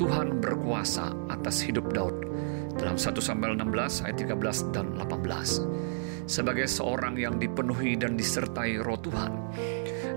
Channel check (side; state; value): left; silent; digital silence